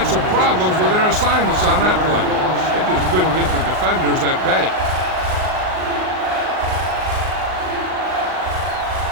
some problems with their assignments on that play. They just couldn't get the defenders at bay.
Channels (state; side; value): late; left; 38 ms